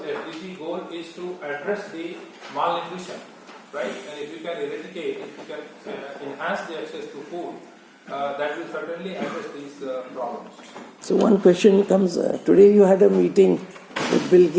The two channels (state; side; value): identical; both; correlation 1.00